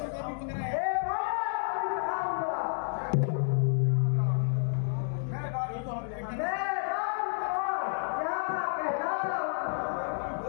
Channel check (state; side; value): silent; right; digital silence